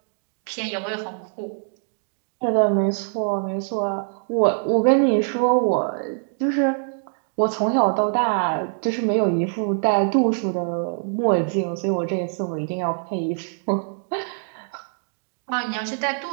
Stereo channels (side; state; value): left; silent; 63 dB below the other